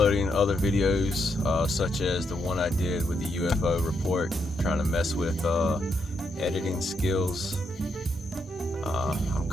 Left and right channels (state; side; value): normal; both; correlation 0.79